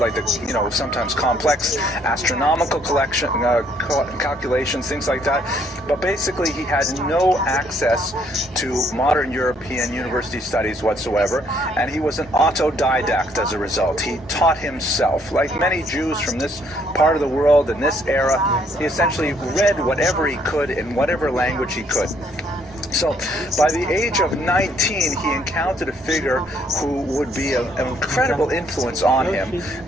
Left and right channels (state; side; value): normal; both; correlation 0.67